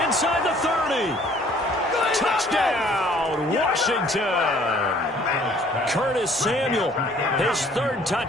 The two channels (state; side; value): normal; both; correlation 0.57